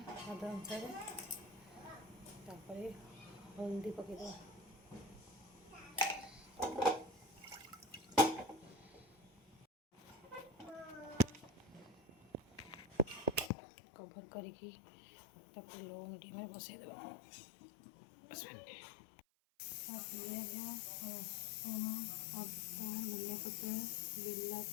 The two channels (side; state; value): right; drops out; at 13.5 s